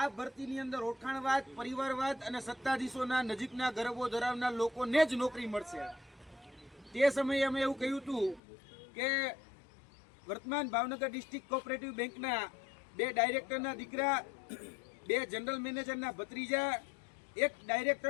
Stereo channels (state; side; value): drops out; right; at 8.4 s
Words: ભરતીની અંદર ઓળખાણવાદ, પરિવારવાદ અને સત્તાધીશોના નજીકના ગરબો ધરાવનાર લોકોને જ નોકરી મળશે। તે સમયે અમે એવું કહ્યું હતું કે વર્તમાન ભાવનગર ડિસ્ટ્રિક્ટ કોઓપરેટિવ બેંકના 2 ડાયરેક્ટરના દીકરા, 2 જનરલ મેનેજરના ભત્રીજા, 1